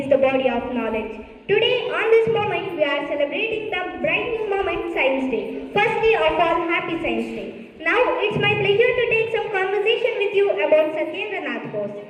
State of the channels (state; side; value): identical; both; correlation 1.00